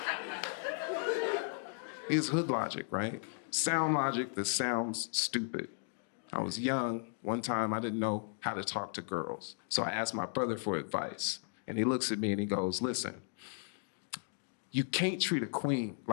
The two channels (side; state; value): right; silent; 54 dB below the other